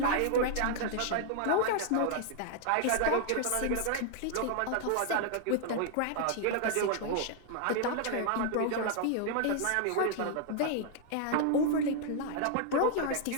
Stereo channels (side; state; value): both; different; correlation 0.00